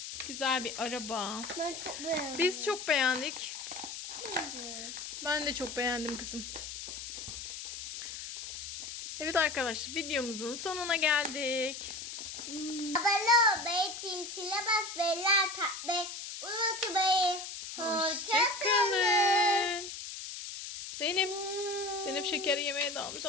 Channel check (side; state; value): left; noise; hiss, 8 dB below the sound